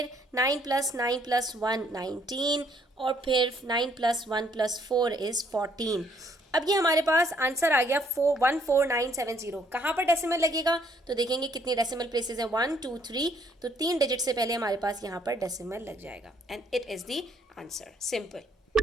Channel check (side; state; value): both; normal; correlation 0.67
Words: 9 + 9 + 1 19, और फिर 9 + 1 + 4 is 14। अब ये हमारे पास आंसर आ गया 14970। कहाँ पर डेसिमल लगेगा, तो देखेंगे कितनी डेसिमल प्लेसेस हैं, 1 2 3, तो 3 डिजिट से पहले हमारे पास यहाँ पर डेसिमल लग जाएगा and it is the answer, simple.